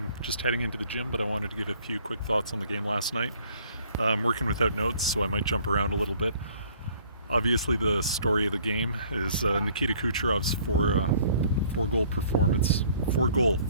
Just heading into the gym, but I wanted to give a few quick thoughts on the game last night. I'm working without notes, so I might jump around a little bit. Obviously, the story of the game is Nikita Kucherov's four-goal performance,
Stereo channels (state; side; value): inverted; both; correlation -0.58